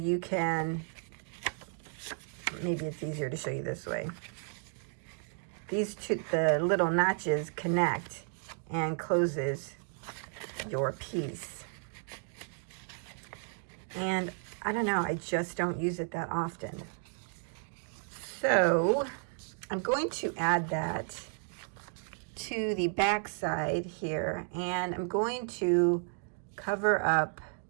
you can, maybe it's easier to show you this way. These two, the little notches connect and closes your piece. And I don't know, I just don't use it that often. So I'm going to add that to the back side here, and I'm going to cover up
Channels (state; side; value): silent; left; 55 dB below the other